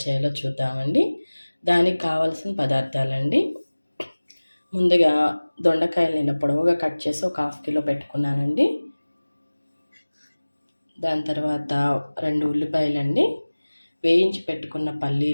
చేయాలో చూద్దామండి. దానికి కావాల్సిన పదార్థాలండి. ముందుగా దొండకాయలు ఇలా పొడవుగా కట్ చేసి ఒక 1/2 కిలో పెట్టుకున్నానండి. దాని తర్వాత 2 ఉల్లిపాయలండి, వేయించి పెట్టుకున్న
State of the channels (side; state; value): both; inverted; correlation -1.00